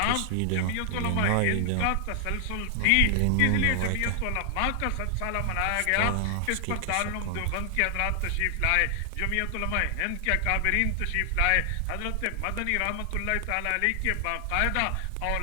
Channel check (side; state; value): both; different; correlation 0.00